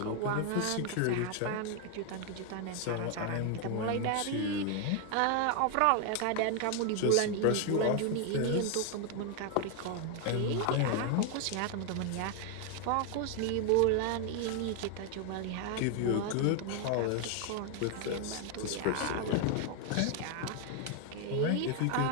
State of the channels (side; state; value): both; different; correlation 0.01